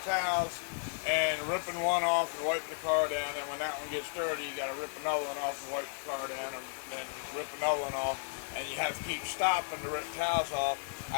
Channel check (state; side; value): silent; right; digital silence